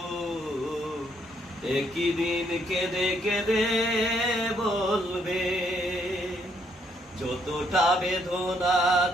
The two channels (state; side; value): normal; both; correlation 0.71